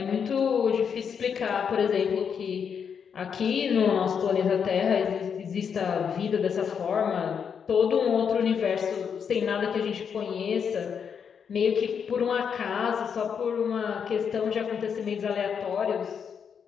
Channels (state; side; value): quieter; right; 7.0 dB